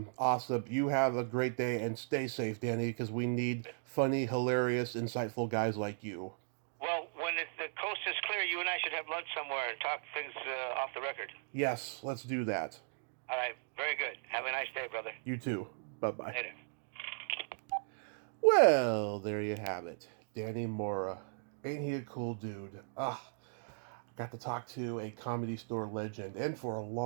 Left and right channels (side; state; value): left; silent; digital silence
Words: You have a great day and stay safe, Danny, because we need funny, hilarious, insightful guys like you. Well, when the coast is clear, you and I should have lunch somewhere and talk things off the record. Yes, let's do that. All right, very good. Have a nice day, brother. You too. Bye-bye. Later. Well, there you have it. Danny Mora. Ain't he a cool dude? Got to talk to a Comedy Store legend, and for a